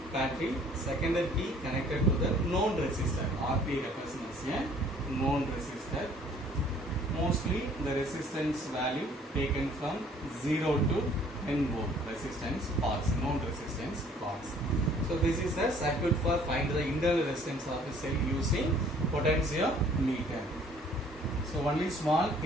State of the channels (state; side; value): normal; both; correlation 0.57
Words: battery, secondary key connected to the known resistor. RP represents a known resistor. Mostly the resistance value taken from 0 to 10 volt resistance parts, known resistance parts. So this is the circuit for find the internal resistance of a cell using potentiometer. So only small